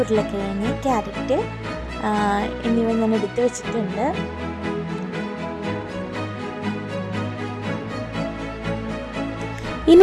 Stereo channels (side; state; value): both; identical; correlation 1.00